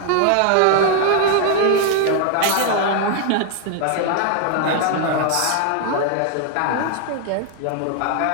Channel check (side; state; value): both; different; correlation 0.00